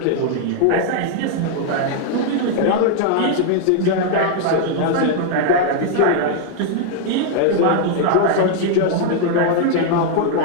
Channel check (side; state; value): both; different; correlation 0.00